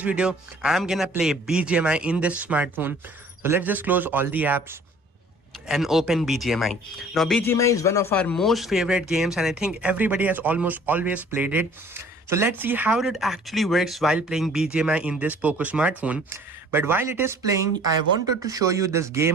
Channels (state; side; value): normal; both; correlation 0.52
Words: video, I'm gonna play Bgmi in this smartphone. So let's just close all the apps and open Bgmi. Now Bgmi is one of our most favorite games and I think everybody has almost always played it. So let's see how it actually works while playing Bgmi in this Poco smartphone. But while it is playing, I wanted to show you this